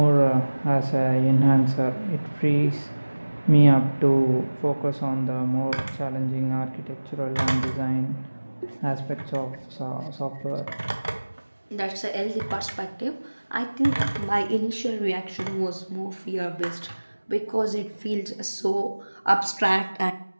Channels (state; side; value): inverted; both; correlation -1.00